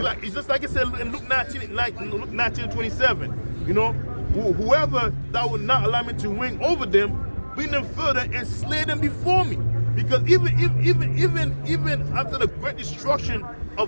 just like it said in Luke 19:27. You know, whoever that would not allow me to wing over them, bring them further and slay them before me. Because even after the great destruction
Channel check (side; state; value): both; inverted; correlation -1.00